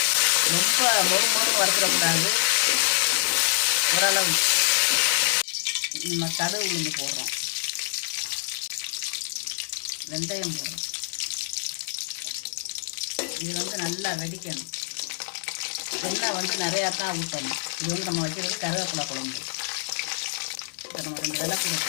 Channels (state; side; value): silent; right; digital silence